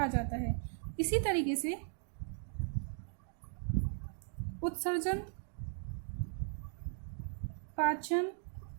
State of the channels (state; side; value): silent; left; digital silence